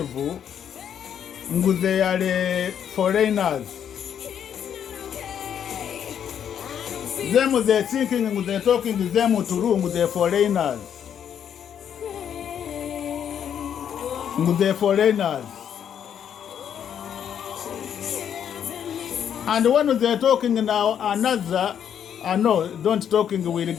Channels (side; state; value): right; quieter; 8.8 dB